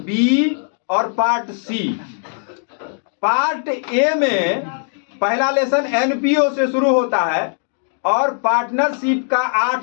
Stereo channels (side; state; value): right; silent; 56 dB below the other